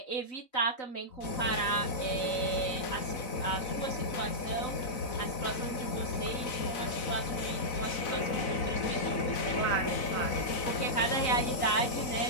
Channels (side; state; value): right; late; 4.0 ms